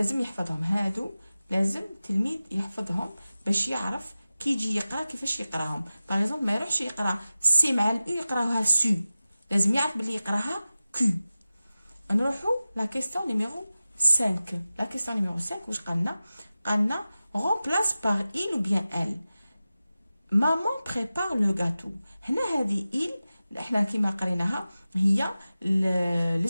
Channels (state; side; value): inverted; both; correlation -0.95